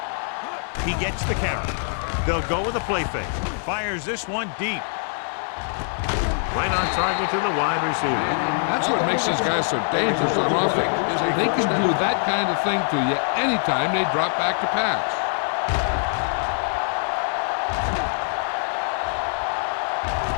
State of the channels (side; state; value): right; silent; 63 dB below the other